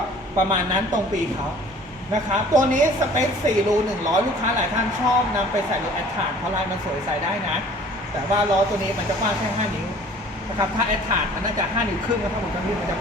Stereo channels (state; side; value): normal; both; correlation 0.50